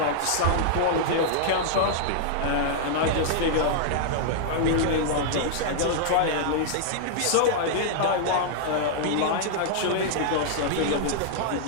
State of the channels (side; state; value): both; different; correlation -0.01